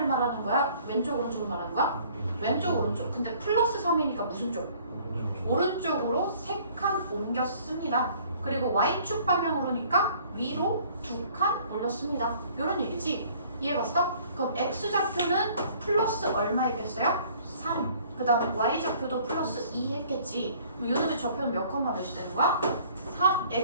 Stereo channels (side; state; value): both; inverted; correlation -0.56